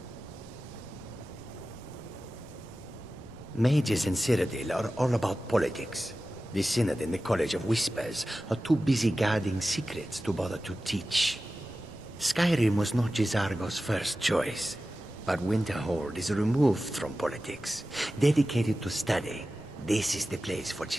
Mages in Cyrodiil are all about politics. The Synod and the College of Whispers are too busy guarding secrets to bother to teach. Skyrim was not Jizargo's first choice, but Winterhold is removed from politics, dedicated to study. This is the place for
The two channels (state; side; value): noise; right; rumble, 21 dB below the sound